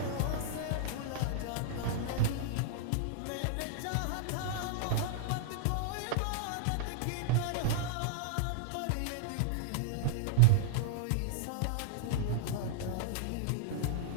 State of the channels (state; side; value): different; both; correlation -0.01